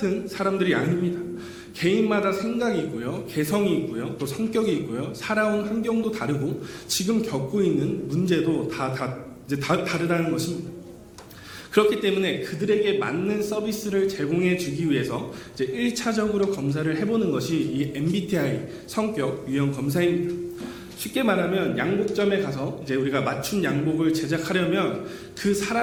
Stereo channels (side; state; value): both; identical; correlation 1.00